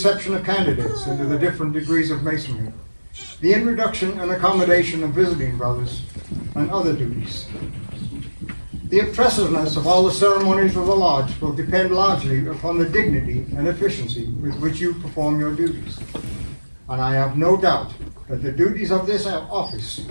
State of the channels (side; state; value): both; inverted; correlation -1.00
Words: of candidates into the different degrees of masonry, the introduction and accommodation of visiting brothers, and other duties. The impressiveness of all the ceremonies of the lodge will depend largely upon the dignity and efficiency with which you perform your duties. And I have no doubt that the duties of this office